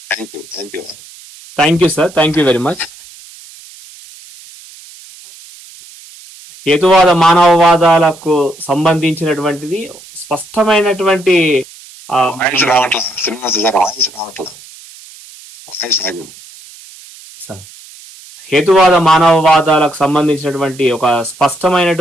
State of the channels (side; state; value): right; noise; hiss, 20 dB below the sound